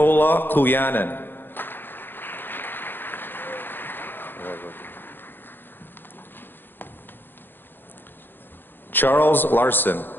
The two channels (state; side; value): late; right; 0.096 ms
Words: Kluyanen. Charles Larson.